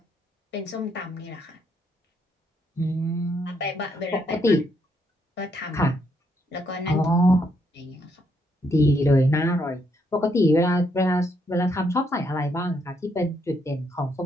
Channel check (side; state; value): both; normal; correlation 0.75